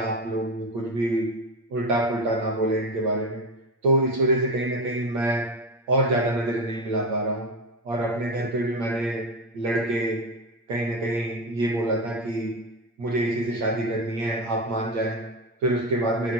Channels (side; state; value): left; late; 8.6 ms